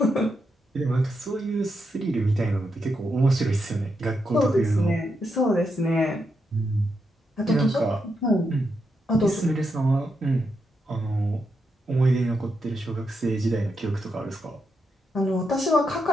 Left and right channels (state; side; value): normal; both; correlation 0.83